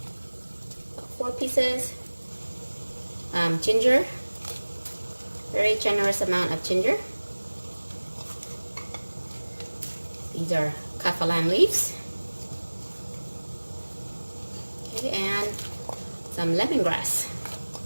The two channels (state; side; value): inverted; both; correlation -1.00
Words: 4 pieces, ginger, very generous amount of ginger. These are kaffir leaves. Okay, and some lemongrass.